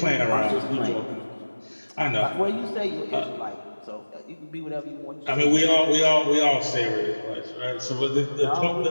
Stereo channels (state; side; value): inverted; both; correlation -1.00